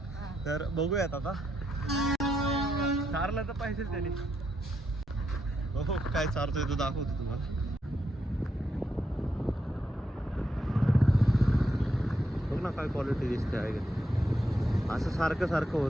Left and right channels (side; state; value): both; normal; correlation 0.81